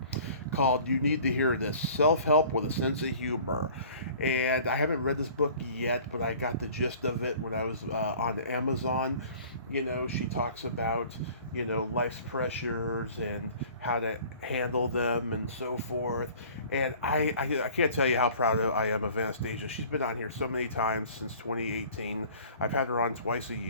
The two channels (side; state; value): both; inverted; correlation -0.48